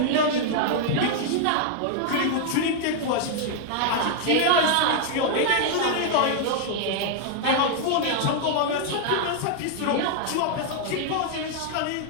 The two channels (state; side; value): different; both; correlation 0.00